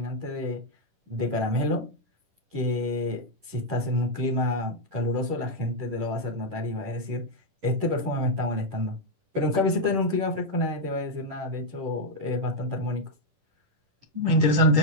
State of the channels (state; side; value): late; left; 10 ms